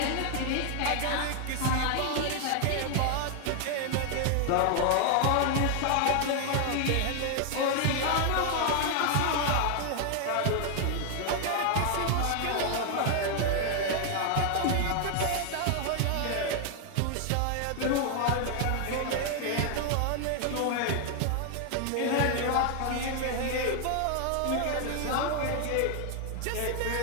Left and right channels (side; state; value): both; different; correlation 0.00